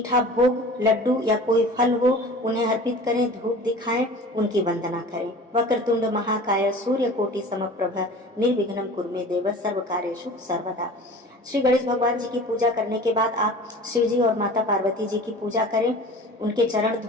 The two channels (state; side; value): normal; both; correlation 0.40